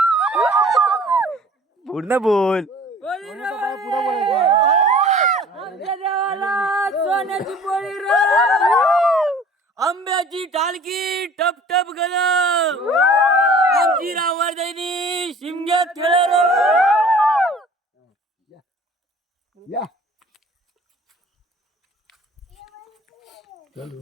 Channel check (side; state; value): both; normal; correlation 0.48